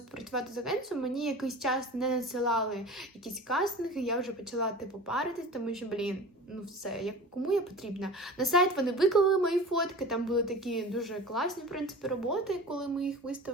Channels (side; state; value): both; normal; correlation 0.37